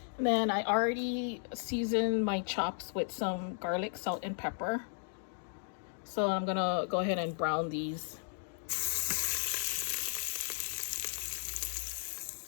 then I already seasoned my chops with some garlic, salt, and pepper. So I'm gonna go ahead and brown these.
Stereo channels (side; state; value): right; silent; digital silence